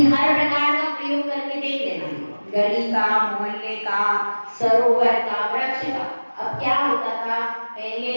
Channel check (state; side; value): inverted; both; correlation -1.00